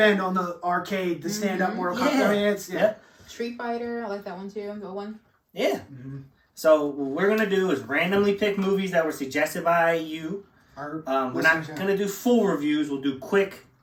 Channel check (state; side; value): identical; both; correlation 1.00